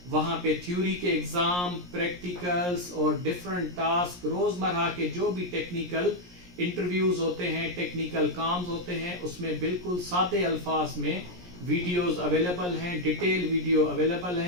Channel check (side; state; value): left; late; 17 ms